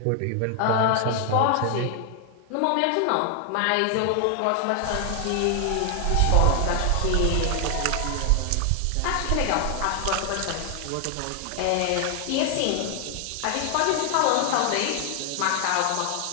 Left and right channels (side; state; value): both; different; correlation 0.00